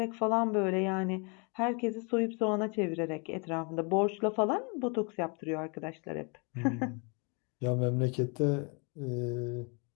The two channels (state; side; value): quieter; right; 33.8 dB